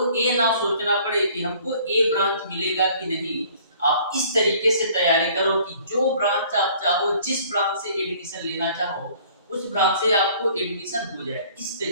ये ना सोचना पड़े कि हमको ए ब्रांच मिलेगा कि नहीं। आप इस तरीके से तैयारी करो कि जो ब्रांच आप चाहो, जिस ब्रांच से एडमिशन लेना चाहो, उस ब्रांच से आपको एडमिशन हो जाए। इस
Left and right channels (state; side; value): inverted; both; correlation -0.55